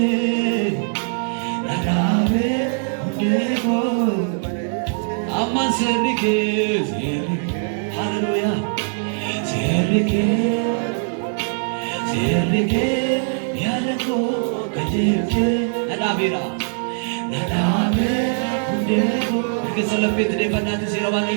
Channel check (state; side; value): silent; left; digital silence